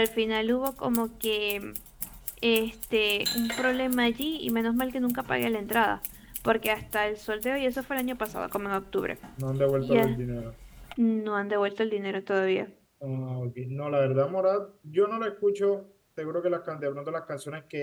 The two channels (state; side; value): identical; both; correlation 1.00